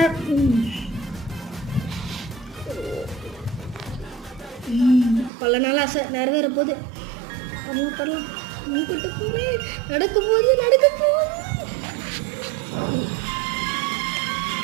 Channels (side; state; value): left; drops out; at 5.3 s